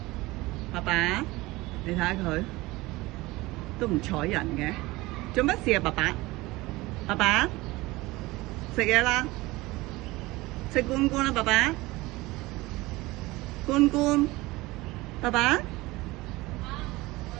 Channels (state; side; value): quieter; left; 20.6 dB